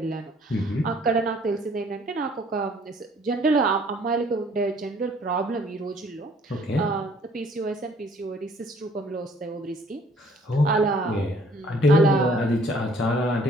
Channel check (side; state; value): both; normal; correlation 0.58